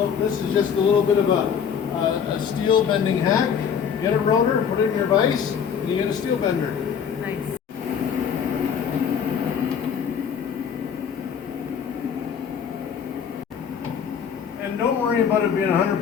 this is just a little bit of a steel bending hack. Get a rotor, put it in your vise, and you get a steel bender. Nice. And don't worry about it being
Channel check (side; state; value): right; quieter; 7.4 dB